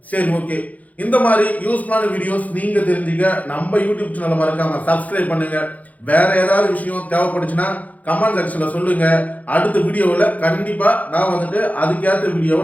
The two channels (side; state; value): right; late; 0.074 ms